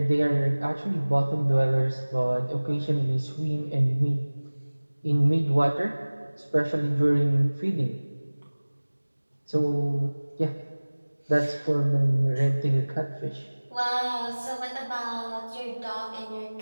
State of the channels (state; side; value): inverted; both; correlation -1.00